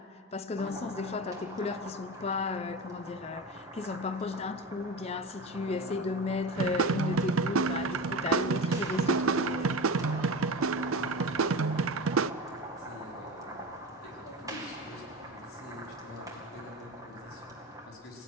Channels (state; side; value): normal; both; correlation 0.26